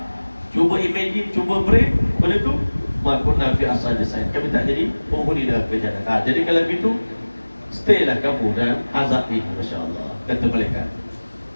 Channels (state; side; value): inverted; both; correlation -1.00